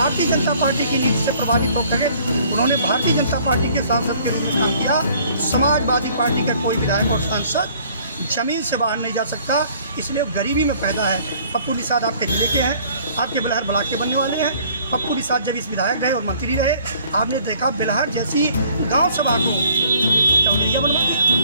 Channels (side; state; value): both; inverted; correlation -0.57